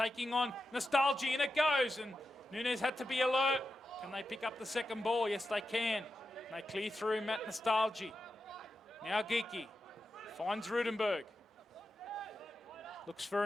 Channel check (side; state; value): both; normal; correlation 0.90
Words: on Nostalgia, and it goes, and Nunez had to be alert. Can they pick up the second ball? Yes, they can. They clear through Matt Nostalgia. Now Geeky finds Rudenberg. Looks for